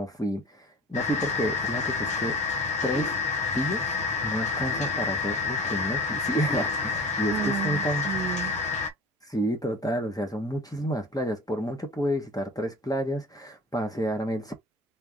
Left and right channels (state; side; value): normal; both; correlation 0.39